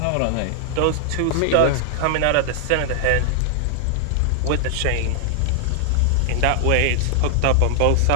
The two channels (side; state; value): both; different; correlation 0.00